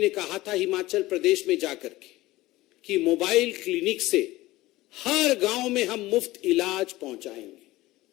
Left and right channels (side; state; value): right; quieter; 18.1 dB